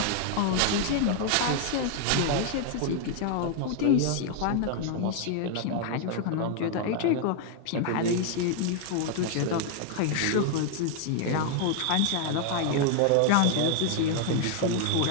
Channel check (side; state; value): both; different; correlation 0.00